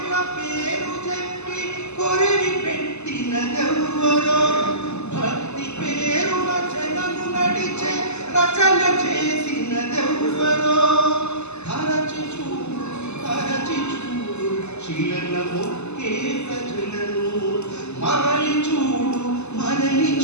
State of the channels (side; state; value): right; late; 0.81 ms